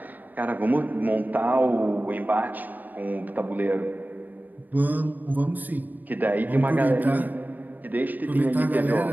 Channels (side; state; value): left; late; 0.086 ms